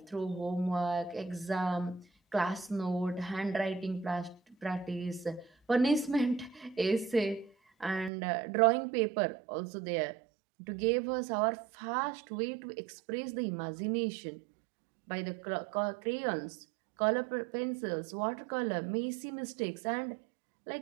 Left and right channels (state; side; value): drops out; left; at 8.1 s